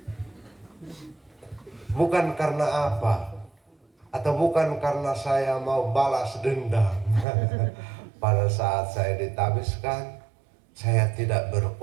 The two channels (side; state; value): left; drops out; at 7.2 s